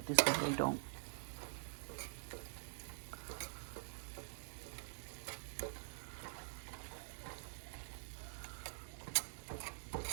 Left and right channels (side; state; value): left; silent; digital silence